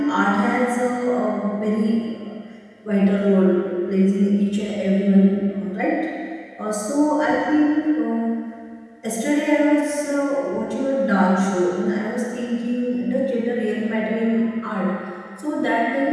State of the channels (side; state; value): both; identical; correlation 1.00